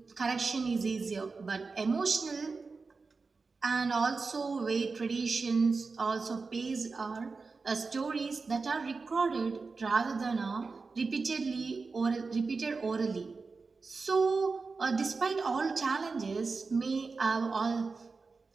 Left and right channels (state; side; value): quieter; left; 4.3 dB